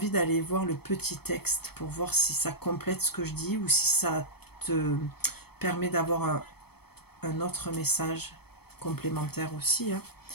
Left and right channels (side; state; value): right; late; 0.97 ms